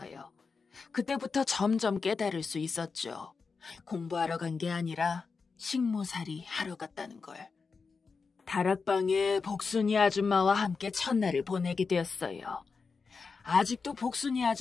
그때부터 점점 깨달을 수 있었죠. 공부하러 간 게 아니라 식모살이 하러 갔다는 걸. 다락방에 복순이 아줌마와 함께 첫날을 보내게 되었어요. 아직도 복순이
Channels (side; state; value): right; quieter; 4.9 dB